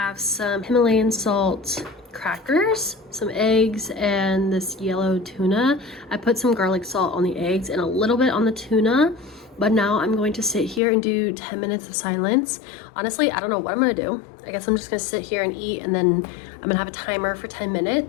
some Himalayan salt crackers, some eggs, and this yellow tuna. I put some garlic salt on the eggs and a little bit on the tuna. But now I'm going to sit here and do 10 minutes of silence. Honestly, I don't know what I'm gonna do. I guess I'm just gonna sit here and eat, and then I'm gonna have a timer for 10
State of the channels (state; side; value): drops out; right; at 10.8 s